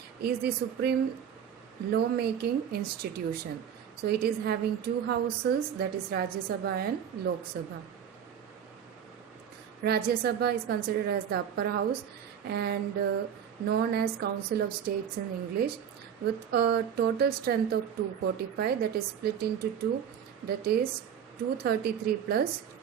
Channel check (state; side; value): quieter; left; 8.5 dB